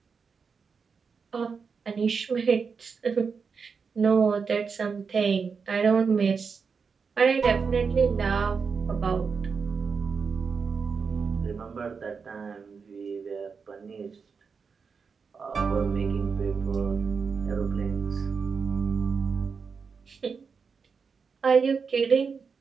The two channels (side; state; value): left; quieter; 5.5 dB